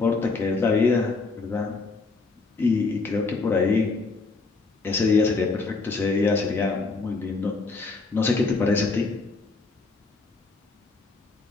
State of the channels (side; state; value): right; quieter; 3.9 dB